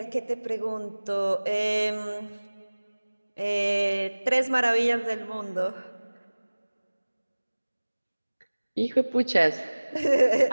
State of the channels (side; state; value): both; inverted; correlation -1.00